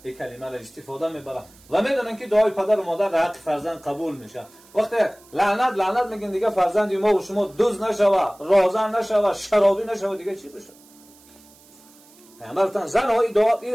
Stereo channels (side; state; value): right; noise; hiss, 26 dB below the sound